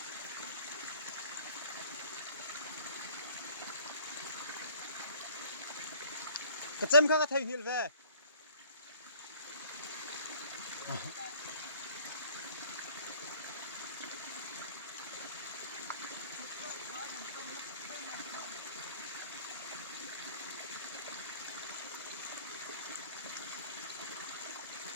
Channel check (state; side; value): inverted; both; correlation -0.52